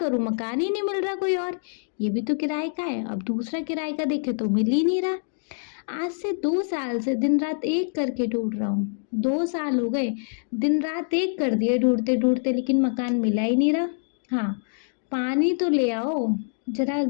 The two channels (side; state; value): right; silent; digital silence